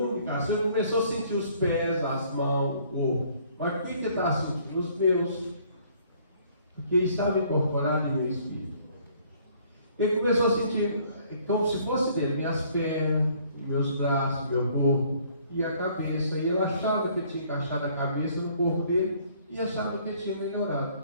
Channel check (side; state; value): both; inverted; correlation -0.61